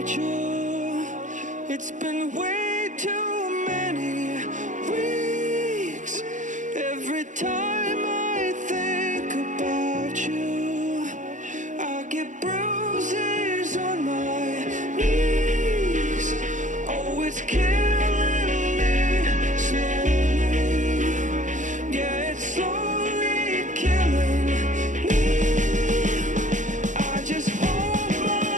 you. It's been way too many weeks. Every time I think about you, I get bruises on my knees. Oh, it's killing me slowly. Yeah, it's slowly killing me. I just hope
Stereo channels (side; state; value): left; late; 0.36 ms